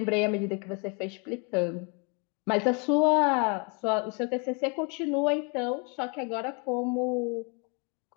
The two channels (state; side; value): quieter; right; 33.9 dB